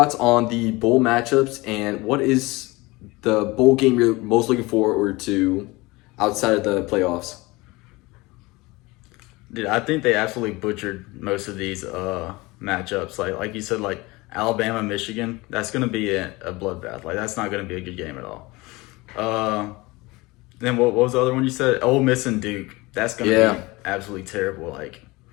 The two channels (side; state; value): right; quieter; 22.6 dB